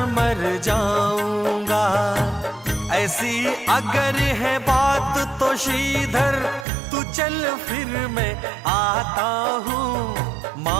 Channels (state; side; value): drops out; left; at 6.7 s